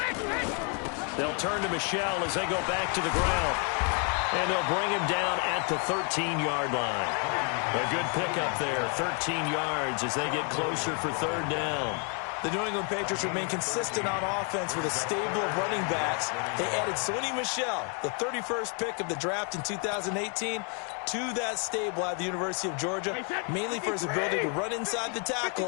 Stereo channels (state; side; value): quieter; right; 39.2 dB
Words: They'll turn to Michelle as they go back to the ground. And they'll bring him down at the 13-yard line. A good pickup there, 13 yards as they get closer for 3rd down. The New England Patriots remain consistent on offense with a stable of running backs. They added Sony Michel, the 31st pick of the draft in 2018, to that stable at the University of Georgia, mainly for his ability to run inside the